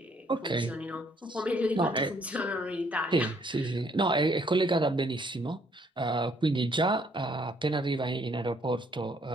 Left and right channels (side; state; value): both; normal; correlation 0.66